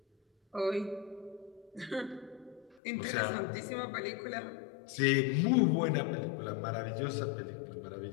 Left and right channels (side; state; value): right; drops out; at 2.8 s